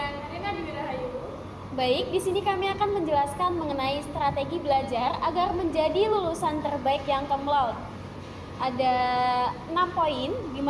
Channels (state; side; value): identical; both; correlation 1.00